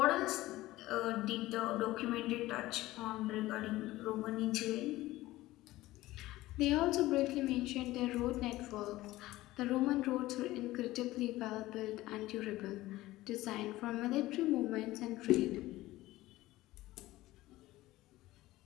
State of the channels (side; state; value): right; quieter; 17.3 dB